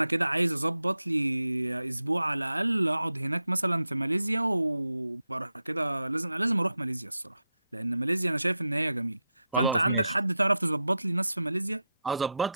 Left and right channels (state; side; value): inverted; both; correlation -0.87